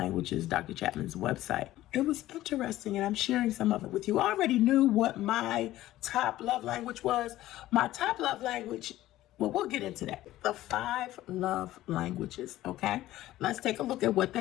Dr. Chapman's website. It was interesting, and I'm sharing some of it with you. I already knew what my top love language was. My top love language, well, we'll get into that. The 5 love languages, okay? Let's take a look at what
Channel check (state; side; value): quieter; right; 15.1 dB